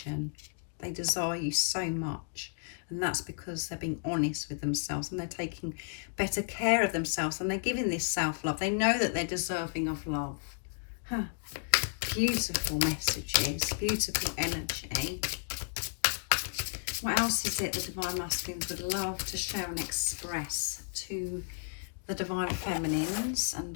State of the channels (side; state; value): right; silent; digital silence